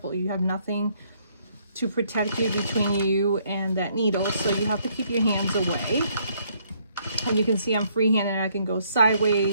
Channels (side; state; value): both; inverted; correlation -0.68